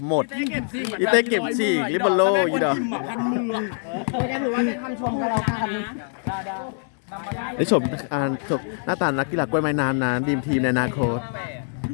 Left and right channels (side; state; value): right; silent; 58 dB below the other